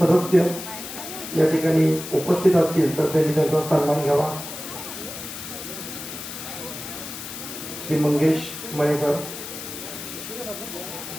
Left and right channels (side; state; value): left; noise; hiss, 9 dB below the sound